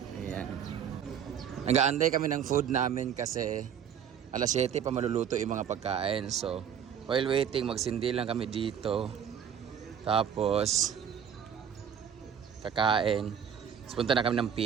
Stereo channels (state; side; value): quieter; left; 8.3 dB